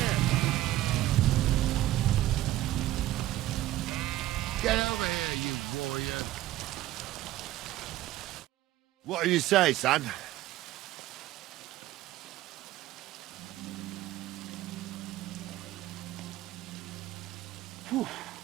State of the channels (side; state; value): left; quieter; 15.1 dB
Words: Get over here, you warrior. What do you say, son?